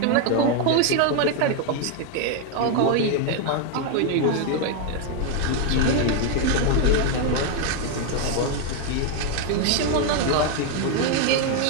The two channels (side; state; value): both; different; correlation 0.01